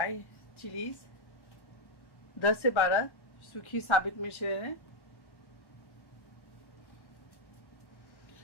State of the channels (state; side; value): late; right; 1.1 ms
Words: चिलीज, 10 से 12 सूखी साबित मिर्च ले लें।